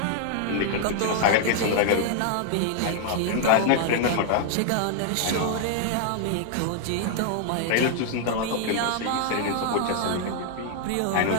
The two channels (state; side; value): different; both; correlation 0.00